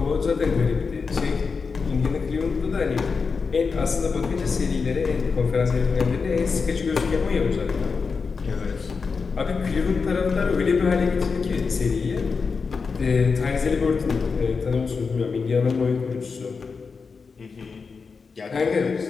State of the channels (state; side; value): quieter; right; 5.0 dB